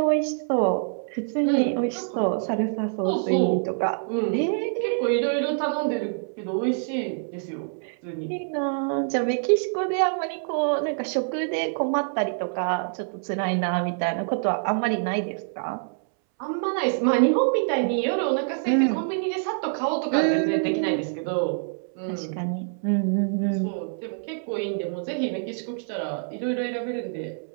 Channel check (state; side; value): silent; left; 61 dB below the other